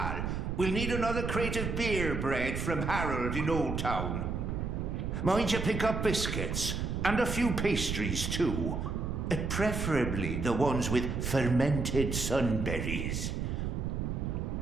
We'll need another crate of beer bread from Harold in Old Town. Mind you pick up biscuits, and a few pastries too. Preferably the ones with fermented sunberries.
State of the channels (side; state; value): right; noise; rumble, 2 dB below the sound